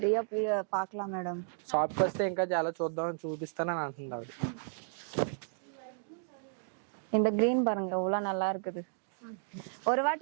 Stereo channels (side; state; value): left; silent; digital silence